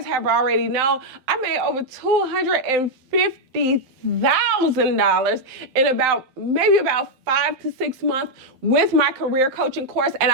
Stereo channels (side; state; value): left; late; 12 ms